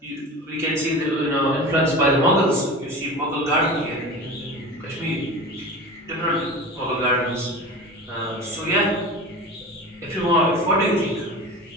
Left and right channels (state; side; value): normal; both; correlation 0.33